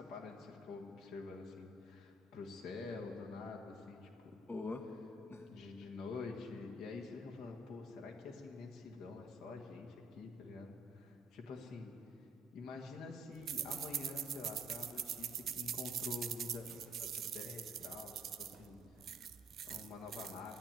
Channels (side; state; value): both; normal; correlation 0.64